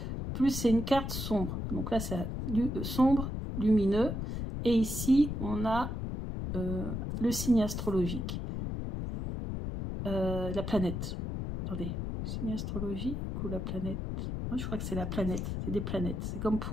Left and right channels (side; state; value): left; noise; rumble, 3 dB below the sound